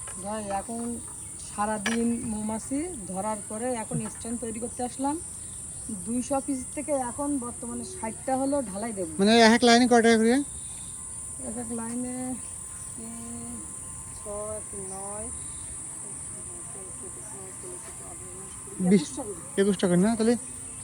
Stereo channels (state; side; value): identical; both; correlation 1.00